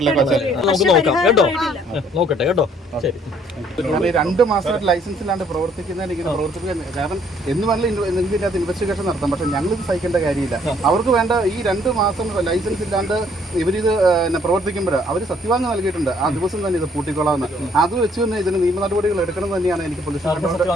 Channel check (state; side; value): normal; both; correlation 0.63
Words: നമുക്ക് നോക്കാം കേട്ടോ. നോക്കട്ടെ കേട്ടോ. ശരി. 2 മാസമായിട്ട് ലൈസൻസ് ഇല്ലാണ്ട് പ്രവർത്തിക്കുന്നതിന് ഇങ്ങനെ പ്രവർത്തിക്കാൻ കാരണം എന്ന് വേണമെങ്കിൽ ഇതിൻ്റെ അകത്ത് ഇൻവെസ്റ്റിഗേഷൻ നടത്താം. പക്ഷേ ഞങ്ങളിത് സഹിക്കേണ്ട കാര്യമില്ല. അവർക്ക് വേണ്ട ഈ 2 മാസം ലൈസൻസ് ഇല്ലാണ്ട് ഇവരിത് പ്രവർത്തിക്കുമ്പോൾ അവർ സത്യവാങ്യം നൽകിയിട്ടുണ്ട്. ആ ദിവസം തന്നെ ഇത് പൂട്ടിക്കൊള്ളാമെന്ന്. അത് വെച്ച് തന്നെ ഇതിന് നിയമ നടപടികൾ എടുക്കണം തന്നെയാണ് എനിക്ക്